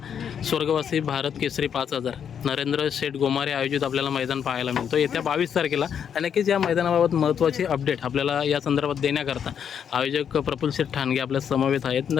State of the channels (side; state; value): right; quieter; 8.1 dB